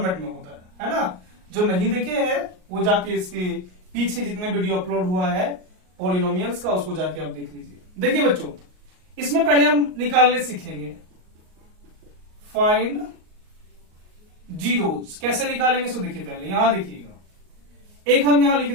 में होता है ना। जो नहीं देखे हैं वो जाके इसके पीछे जितने वीडियो अपलोड हुआ है पॉलिनोमियल्स का, उसको जाके आप देख लीजिए। देखिए बच्चों, इसमें पहले हम निकालने सीखेंगे फाइंड जीरोज। कैसे निकालेंगे सो देखिए, पहले यहां देखिएगा, एक हम यहां लिख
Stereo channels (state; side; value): late; left; 38 ms